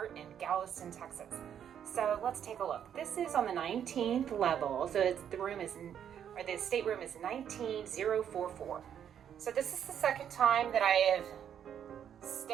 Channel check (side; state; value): left; quieter; 9.0 dB